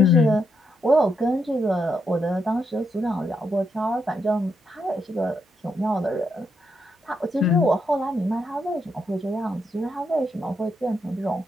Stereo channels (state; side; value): normal; both; correlation 0.80